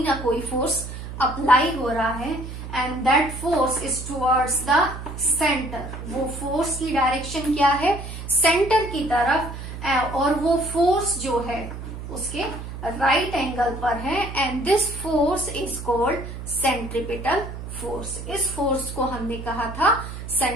ना कोई फोर्स अप्लाई हो रहा है, and that force is towards the centre. वो फोर्स की डायरेक्शन क्या है, सेंटर की तरफ, और वो फोर्स जो है उसके राइट एंगल पर है, and this force is called centripetal force. इस फोर्स को हमने कहा था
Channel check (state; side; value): noise; right; hum, 9 dB below the sound